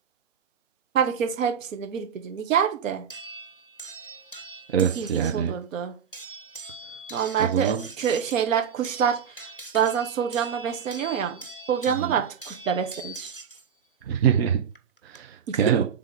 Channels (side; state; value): left; quieter; 7.7 dB